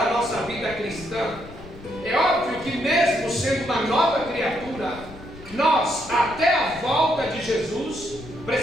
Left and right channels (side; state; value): left; noise; rumble, 17 dB below the sound